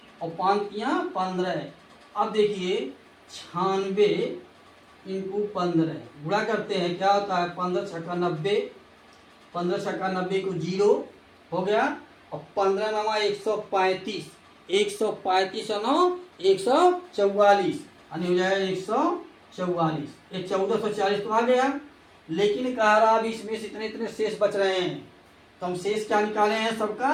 और 5 तियाँ 15। अब देखिए 96 × 15 गुणा करते हैं, क्या होता है 15 छक्का 90, 15 छक्का 90 को 0 हो गया, और 15 नमा 135, 135 और 9 144, यानी हो जाएगा 144। ये 1440 तो आ गया, लेकिन कह रहा अभी इसमें से इतने इतने शेष बच रहे हैं, तो हम शेष क्या निकाले हैं सबका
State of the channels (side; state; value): both; identical; correlation 1.00